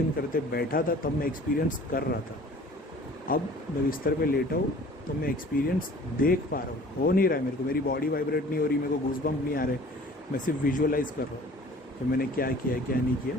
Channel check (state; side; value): normal; both; correlation 0.48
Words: करते बैठा था तब मैं एक्सपीरियंस कर रहा था, अब मैं बिस्तर पे लेटा हूँ तो मैं एक्सपीरियंस देख पा रहा हूँ। हो नहीं रहा है मेरे को, मेरी बॉडी वाइब्रेट नहीं हो रही, मेरे को गूज़बम्प नहीं आ रहे, मैं सिर्फ विजुअलाइज कर रहा हूँ कि मैंने क्या किया क्या नहीं किया,